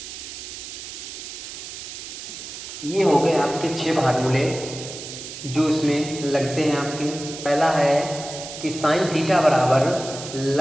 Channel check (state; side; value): noise; right; hiss, 10 dB below the sound